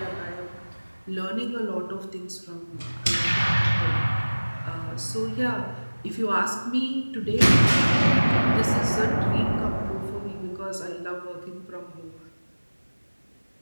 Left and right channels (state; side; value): inverted; both; correlation -1.00